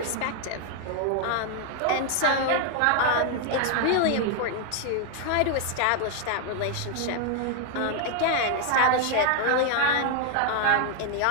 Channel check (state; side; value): different; both; correlation 0.00